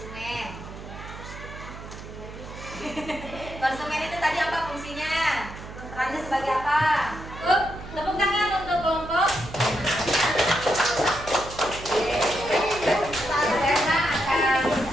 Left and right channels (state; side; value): noise; right; hum, 13 dB below the sound